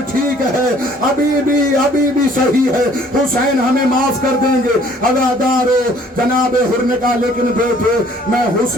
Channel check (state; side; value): normal; both; correlation 0.57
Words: ठीक है, अभी भी सही है, हुसैन हमें माफ कर देंगे। अज़ादारों, जनाब हुर ने कहा, लेकिन बेटे मैं